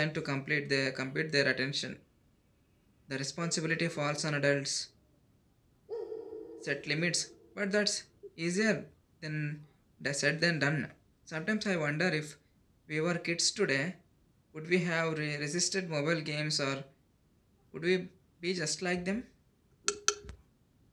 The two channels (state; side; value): identical; both; correlation 1.00